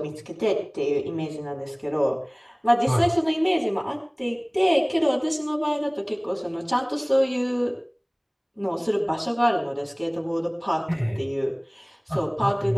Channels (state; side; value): identical; both; correlation 1.00